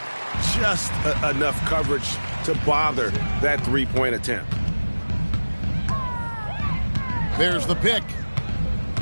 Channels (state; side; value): inverted; both; correlation -1.00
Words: Just enough coverage to bother that 3-point attempt. There's the pick.